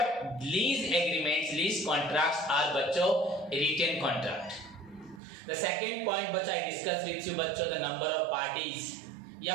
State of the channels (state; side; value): drops out; left; at 5.2 s